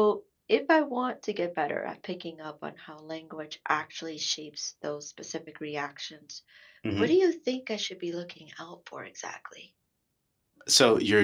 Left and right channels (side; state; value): both; identical; correlation 1.00